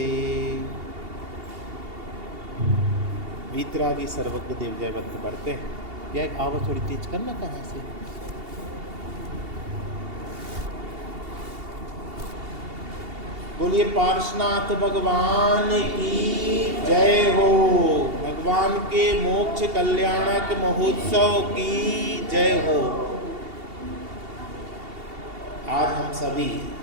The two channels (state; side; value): late; left; 2.8 ms